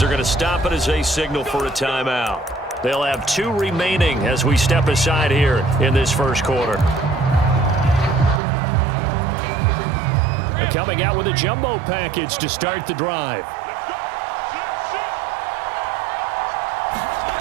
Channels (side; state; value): left; drops out; at 8.4 s